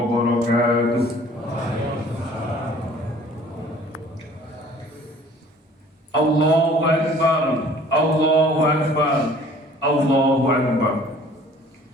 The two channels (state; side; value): normal; both; correlation 0.52